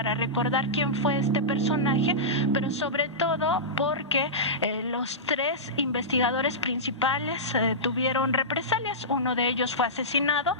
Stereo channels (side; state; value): both; normal; correlation -0.16